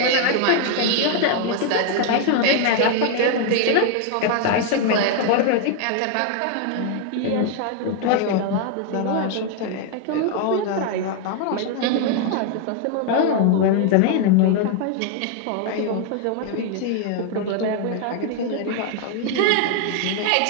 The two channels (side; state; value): both; different; correlation 0.00